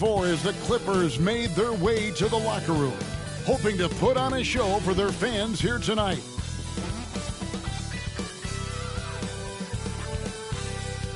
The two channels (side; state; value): both; identical; correlation 1.00